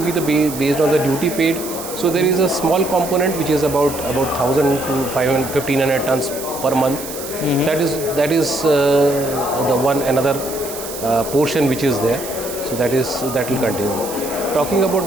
be based on the duty paid. So there is a small component which is about 1,000 to 1,500 tons per month. That is the one another portion which is there. So that will continue. Talking about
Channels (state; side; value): noise; right; hiss, 11 dB below the sound